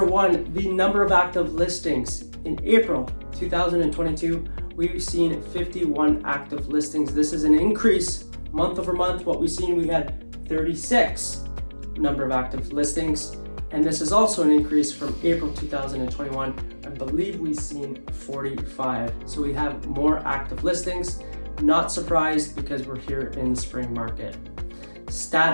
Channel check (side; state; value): both; inverted; correlation -1.00